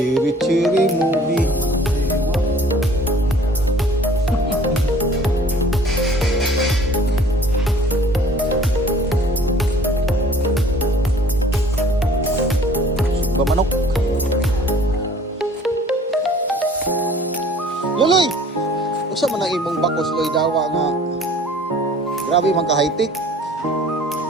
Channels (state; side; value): normal; both; correlation 0.52